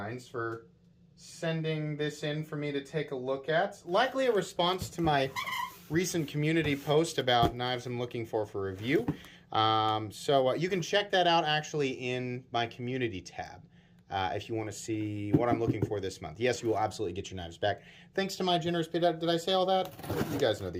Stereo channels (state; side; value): identical; both; correlation 1.00